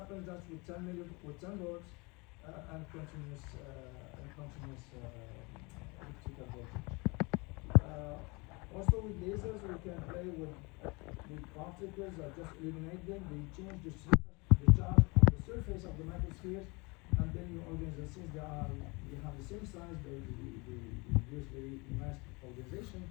just with 10 volts and continuous electrical voltage. Also with lasers, we can play with particles or just eliminate them. They change the charge on the surface of the microspheres, and then you organize them. Since they have the same size, they use very nice organization.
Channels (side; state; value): right; quieter; 27.4 dB